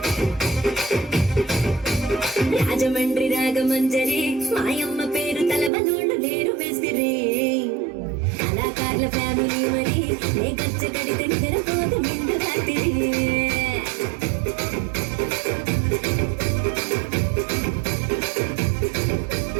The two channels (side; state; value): left; drops out; at 5.7 s